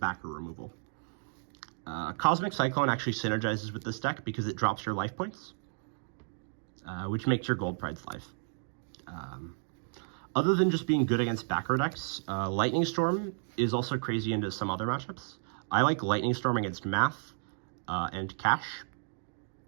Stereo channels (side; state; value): left; silent; digital silence